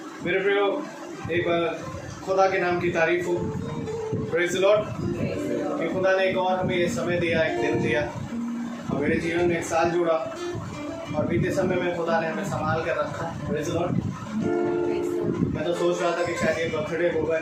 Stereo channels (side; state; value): both; identical; correlation 1.00